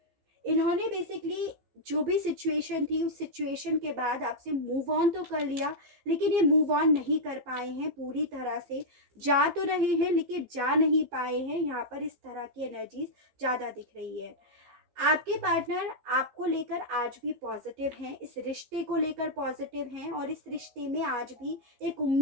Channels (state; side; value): late; left; 15 ms